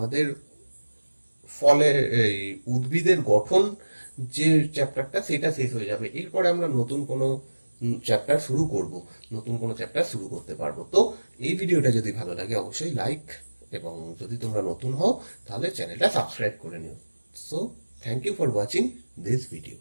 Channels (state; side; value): inverted; both; correlation -1.00